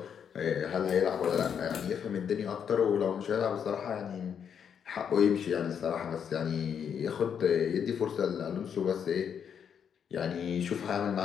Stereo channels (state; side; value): quieter; right; 7.8 dB